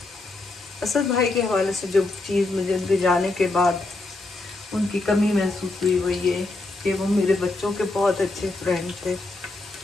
असद भाई के हवाले से जो चीज़ मुझे उनके जाने के बाद उनकी कमी महसूस हुई वो ये कि वो मेरे बच्चों के बहुत अच्छे फ्रेंड थे,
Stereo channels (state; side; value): quieter; right; 3.1 dB